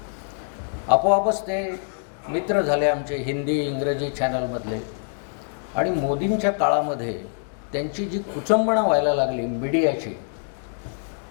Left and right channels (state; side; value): silent; right; digital silence